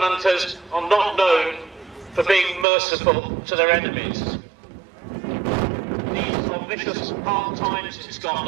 are not known for being merciful to their enemies. These are vicious hard times in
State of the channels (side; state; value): left; drops out; at 2.7 s